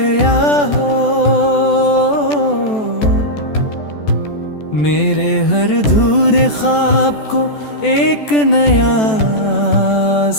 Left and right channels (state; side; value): late; right; 14 ms